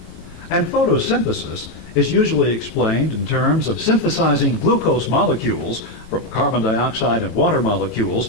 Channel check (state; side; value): late; right; 18 ms